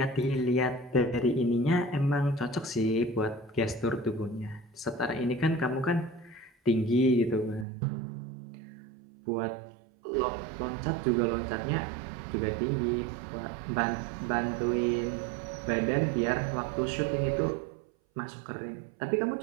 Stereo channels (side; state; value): left; drops out; at 7.7 s